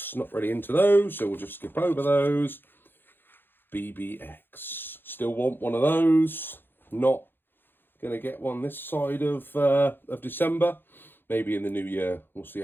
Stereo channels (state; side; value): late; right; 0.099 ms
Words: Not really into those, so we'll just skip over those. BBX. Still want one of those. Not going to get one this side of December. Maybe in the new year. We'll see